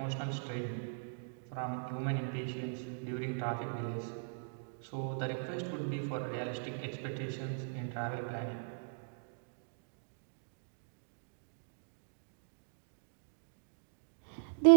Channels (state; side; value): silent; left; digital silence